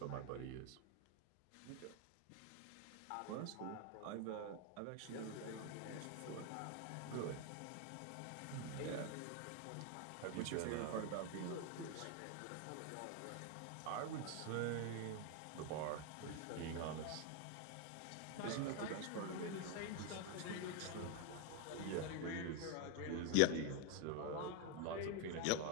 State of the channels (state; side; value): different; both; correlation 0.01